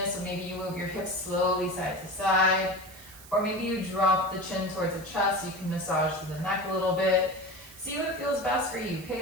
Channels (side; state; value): right; noise; hiss, 19 dB below the sound